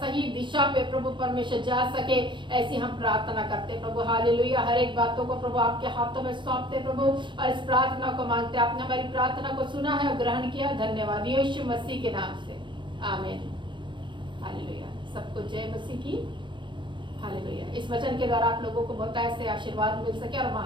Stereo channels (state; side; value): late; left; 0.23 ms